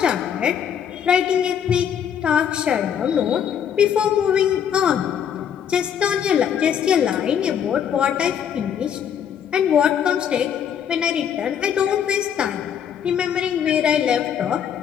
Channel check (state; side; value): quieter; right; 8.5 dB